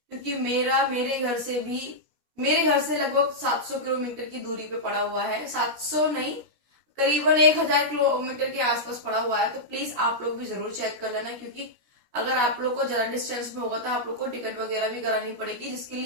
क्योंकि मेरे घर से लगभग 700 किलोमीटर की दूरी पे पड़ा हुआ है। 700 नहीं, करीबन 1000 किलोमीटर के आसपास पड़ा हुआ है। तो प्लीज आप लोग भी जरूर चेक कर लेना, क्योंकि अगर आप लोग को ज्यादा डिस्टेंस में होगा तो आप लोग को टिकट वगैरह भी करानी पड़ेगी, जिसके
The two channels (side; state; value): left; late; 17 ms